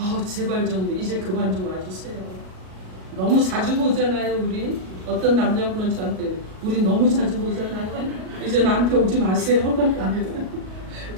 제발 좀 이제 그만 좀 와주세요. 너무 자주 보잖아요. 우리 어떤 남자분은 저한테 우리 너무 자주 보잖아요. 이제 나한테 오지 마세요.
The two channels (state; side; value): late; left; 38 ms